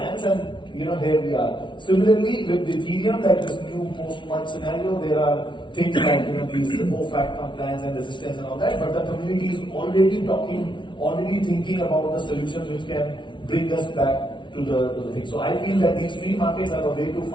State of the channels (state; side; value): late; right; 0.24 ms